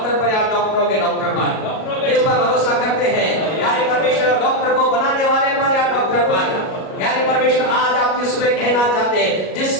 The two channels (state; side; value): late; right; 37 ms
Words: पर या डॉक्टरों के डॉक्टर पर? किस पर भरोसा करते हैं? यानी परमेश्वर डॉक्टर को बनाने वाले पर या डॉक्टर पर? यानी परमेश्वर आज आपकी सुबह कहना चाहते हैं,